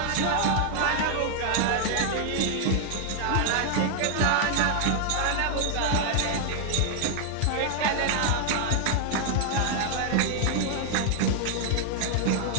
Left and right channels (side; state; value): both; different; correlation 0.00